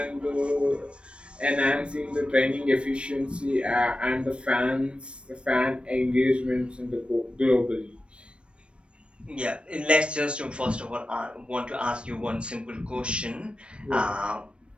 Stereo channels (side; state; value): left; late; 0.058 ms